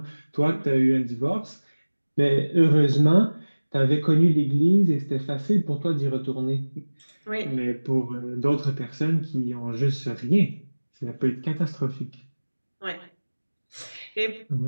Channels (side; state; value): both; inverted; correlation -1.00